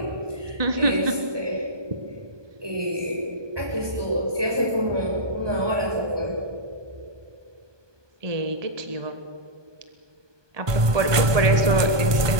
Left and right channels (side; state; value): left; late; 1.2 ms